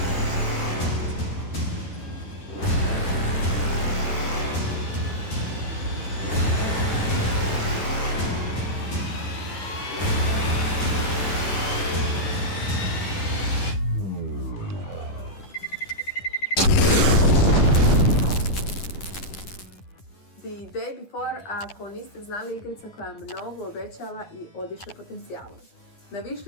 The Day Before, ako niste znali, igrica koja mnogo obećava i odiše potencijalom. Na wish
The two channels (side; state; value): right; late; 10 ms